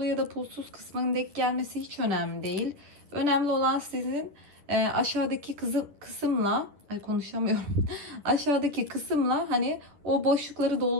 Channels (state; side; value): late; left; 10 ms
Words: ya da pulsuz kısmının denk gelmesi hiç önemli değil. Önemli olan sizin aşağıdaki kısımla, ay konuşamıyorum. Aşağıdaki kısımla hani o boşlukları